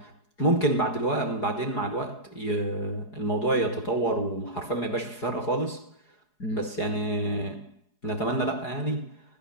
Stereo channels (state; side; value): late; right; 4.8 ms